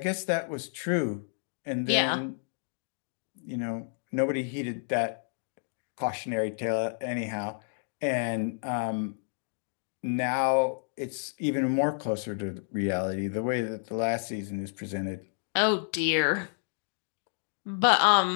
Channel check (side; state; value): right; silent; digital silence